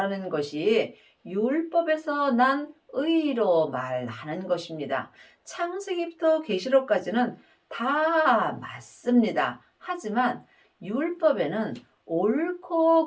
것이 율법에서 난 의로 말하는 것입니다. 창세기부터 계시록까지는 다 맞습니다. 하지만 율법에는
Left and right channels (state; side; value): identical; both; correlation 1.00